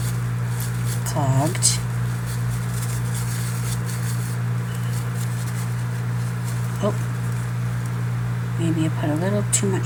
clogged. Oh, maybe I put a little too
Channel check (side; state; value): both; identical; correlation 1.00